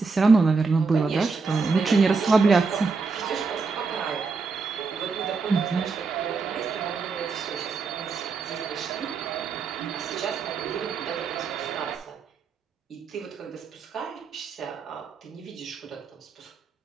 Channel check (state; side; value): quieter; left; 4.6 dB